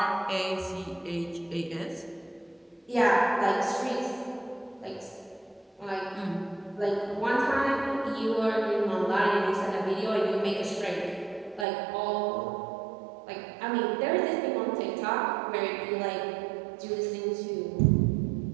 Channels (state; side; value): drops out; left; at 11.7 s